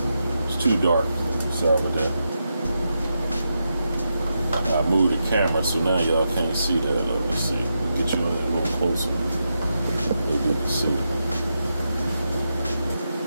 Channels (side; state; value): both; inverted; correlation -0.86